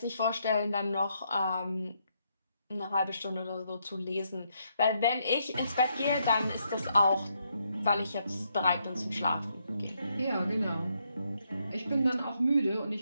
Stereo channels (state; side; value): inverted; both; correlation -0.77